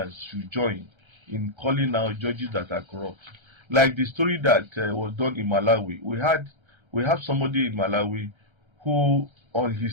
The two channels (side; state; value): left; late; 1.3 ms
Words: should join in calling out judges that are corrupt. Like the story that was done in Malawi, we have somebody in Malawi who, on